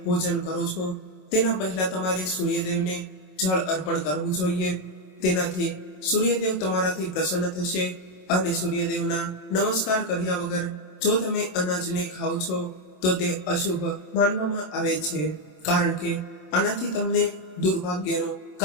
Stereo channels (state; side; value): late; right; 27 ms